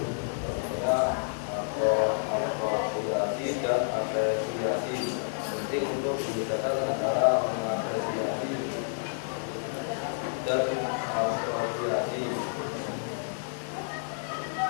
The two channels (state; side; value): silent; right; digital silence